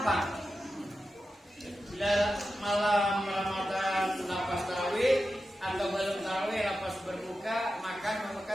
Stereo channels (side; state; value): both; normal; correlation 0.91